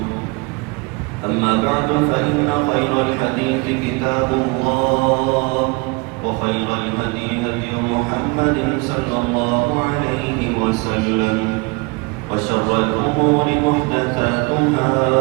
أما بعد فإن خير الحديث كتاب الله وخير الهدي هدي محمد صلى الله عليه وسلم وشر الأمور محدثاتها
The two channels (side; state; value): left; quieter; 27.8 dB